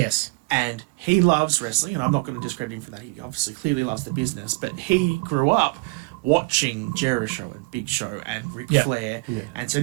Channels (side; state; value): left; quieter; 27.5 dB